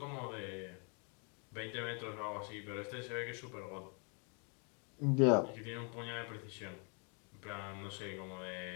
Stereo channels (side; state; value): right; quieter; 37.0 dB